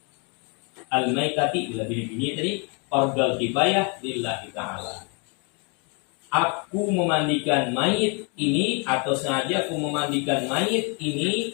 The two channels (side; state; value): right; quieter; 34.3 dB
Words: al-maitati, bila bini tadi fardal kifayah lillahi ta'ala. Aku memandikan mayit ini, atau sengaja aku memandikan mayit ini